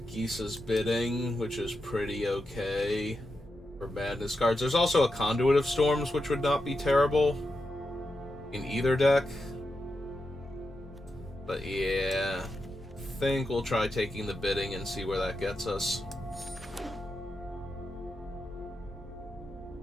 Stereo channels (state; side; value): normal; both; correlation 0.88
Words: Bidding, which is pretty okay for madness cards. There's also a Conduit of Storms, which would not be terrible in either deck. But yeah, I think we'll try taking the Bidding and see where that gets us.